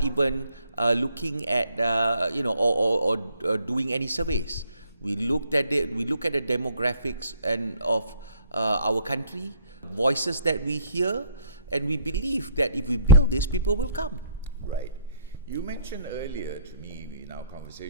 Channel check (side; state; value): both; inverted; correlation -0.63